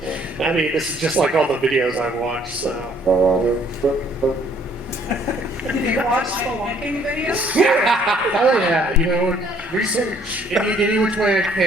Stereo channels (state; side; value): normal; both; correlation 0.62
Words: I mean, this is just like all the videos I've watched, so. Did you watch spelunking videos? Oh yeah, you know, research any which way I